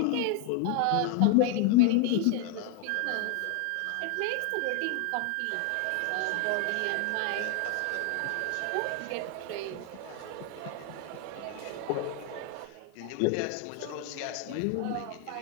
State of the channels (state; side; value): different; both; correlation 0.00